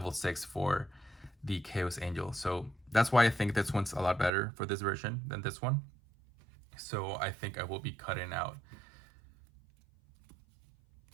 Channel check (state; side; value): drops out; left; at 4.3 s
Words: 6 for the Chaos Angel. So that's why I think this one's a lot better for this version than this one. So I think I will be cutting out.